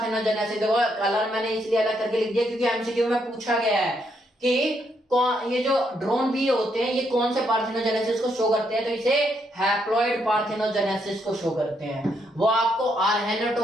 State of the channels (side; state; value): both; normal; correlation 0.76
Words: देखो कलर मैंने इसलिए अलग करके लिख दिया क्योंकि एमसीक्यू में पूछा गया है ये जो ड्रोन बी होते हैं ये कौन से पार्थेनोजेनेसिस को शो करते हैं, तो इसे हैप्लॉइड पार्थेनोजेनेसिस को शो करते हैं। वो आपको